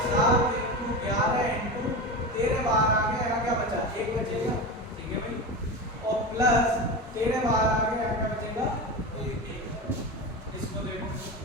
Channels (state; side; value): normal; both; correlation 0.23